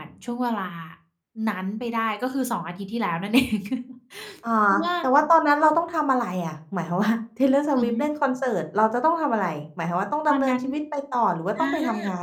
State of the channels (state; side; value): identical; both; correlation 1.00